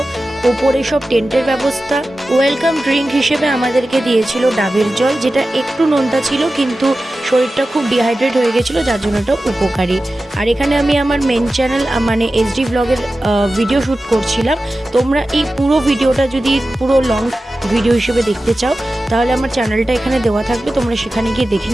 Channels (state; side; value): normal; both; correlation 0.94